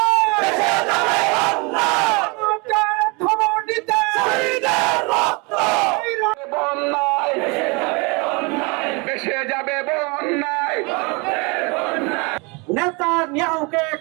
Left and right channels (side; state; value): left; quieter; 29.4 dB